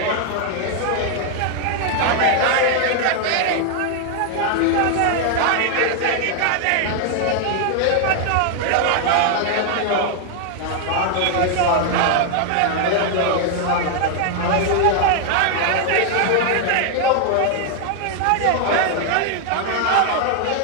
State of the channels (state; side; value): different; both; correlation 0.00